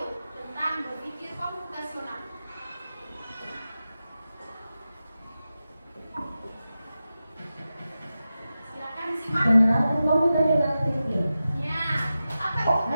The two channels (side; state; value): both; inverted; correlation -0.92